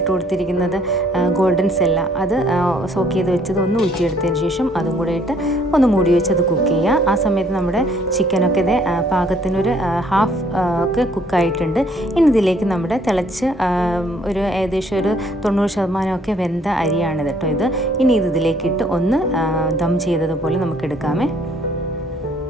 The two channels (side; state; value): both; normal; correlation 0.63